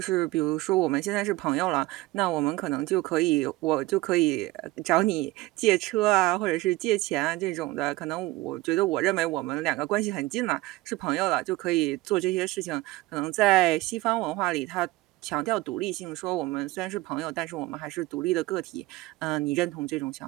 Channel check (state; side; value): quieter; left; 19.1 dB